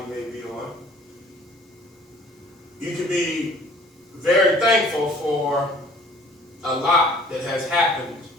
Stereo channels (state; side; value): normal; both; correlation 0.52